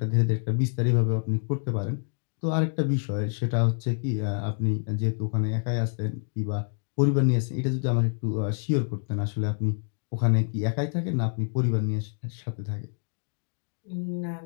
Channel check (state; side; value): silent; right; 57 dB below the other